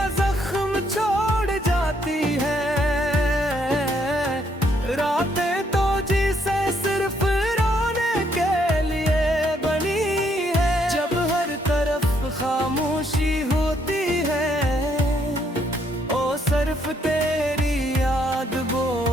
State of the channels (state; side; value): normal; both; correlation 0.71